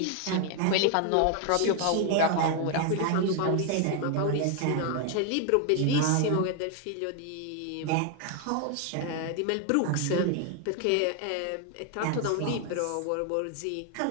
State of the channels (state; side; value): different; both; correlation 0.00